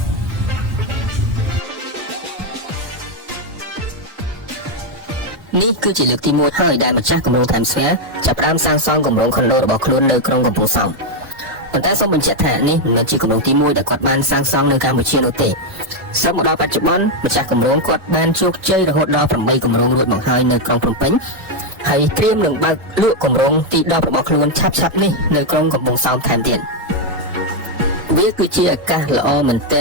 នេះគឺជាលើកទី1ហើយដែលម្ចាស់គម្រោង Times Square ចាប់ផ្ដើមសាងសង់គម្រោងខុនដូរបស់ខ្លួននៅក្រុងកំពង់សោមប៉ុន្តែសូមបញ្ជាក់ថានេះមិនមែនជាគម្រោងទី1ដែលគាត់បានសាងសង់នៅកម្ពុជានោះទេសឹកមកដល់បច្ចុប្បន្នម្ចាស់គម្រោងគាត់បានជោគជ័យរហូតដល់8គម្រោងរួចមកហើយនៅក្រុងភ្នំពេញហើយត្រៀមនឹងបើកលក់គម្រោងទី10របស់ខ្លួនឆាប់ៗនេះនៅក្រុងកំពង់សោមថែមទៀតវាគឺជាឱកាសល្អមែនទែ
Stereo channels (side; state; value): left; late; 3.1 ms